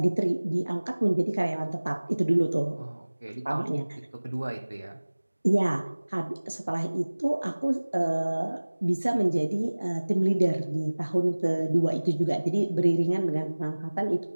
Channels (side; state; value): both; inverted; correlation -1.00